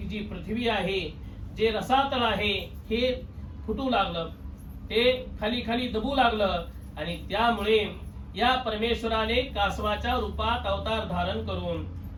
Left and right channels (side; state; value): both; identical; correlation 1.00